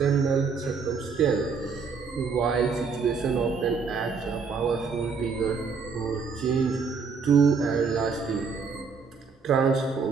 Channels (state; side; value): quieter; left; 5.3 dB